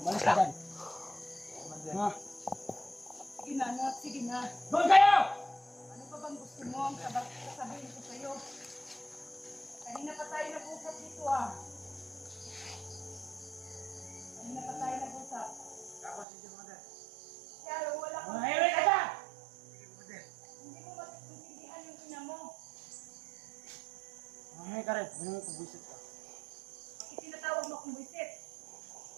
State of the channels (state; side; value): drops out; left; at 16.2 s